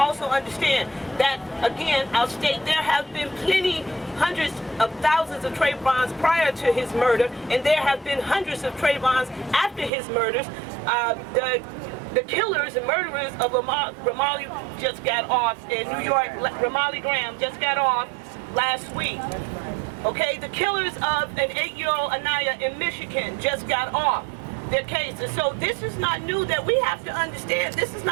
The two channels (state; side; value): drops out; left; at 9.9 s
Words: understand that, again, I'll state there have been plenty, hundreds of thousands of Trayvons prior to his murder, and there have been hundreds of Trayvons after his murders. The killers and murderers of Ramarley just got off in New York. Ramarley Graham just got off last week. Okay, the killers of an 8-year-old Anaya in Michigan just got off their cases. So this is not new, that we have to understand. This is